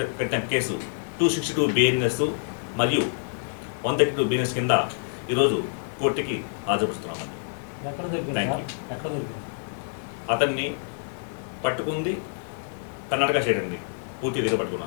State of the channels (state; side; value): silent; right; 60 dB below the other